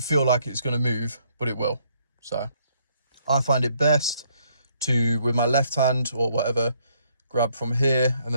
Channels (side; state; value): both; inverted; correlation -0.69